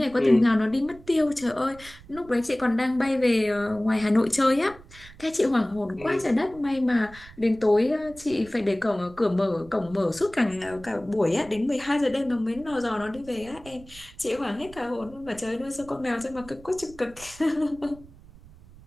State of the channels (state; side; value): noise; right; rumble, 21 dB below the sound